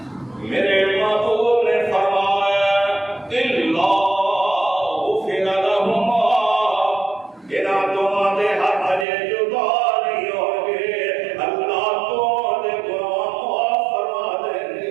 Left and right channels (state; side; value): drops out; left; at 9.1 s